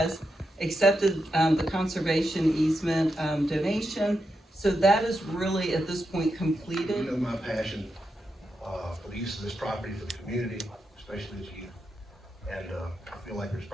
accepted the conservation easement donation. So that is really, at this point, completed. You know my passion for the use of this property for the community, especially as youth. And I feel like there's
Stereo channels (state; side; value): normal; both; correlation 0.86